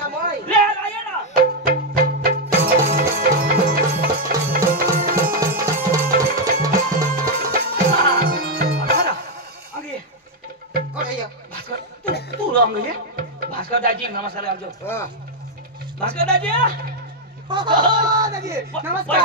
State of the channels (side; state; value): both; normal; correlation 0.00